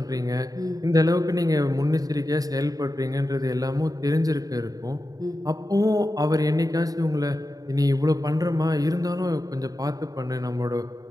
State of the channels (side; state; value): left; late; 0.18 ms